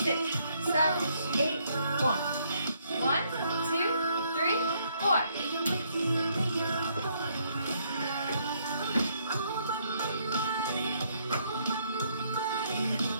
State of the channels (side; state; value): both; inverted; correlation -0.70